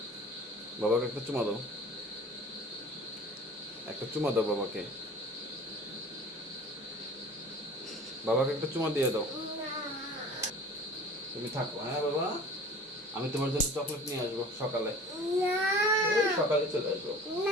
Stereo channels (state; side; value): normal; both; correlation 0.43